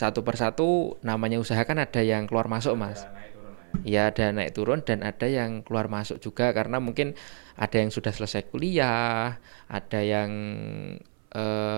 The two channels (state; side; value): silent; left; 56 dB below the other